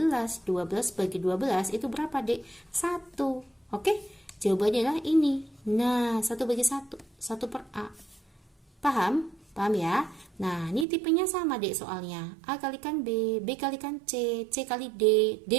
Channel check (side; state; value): left; drops out; at 10.9 s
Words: 12 bagi 12 itu berapa dek? 1. Oke, jawabannya adalah ini. Nah, 1 bagi 1, 1/A. Paham? Paham ya? Nah, ini tipenya sama dek soalnya. A kalikan B, B kalikan C, C kali D,